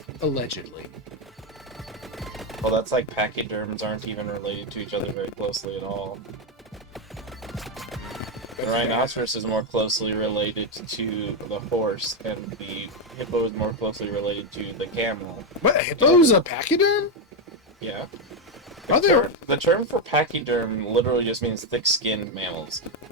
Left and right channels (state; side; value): normal; both; correlation 0.06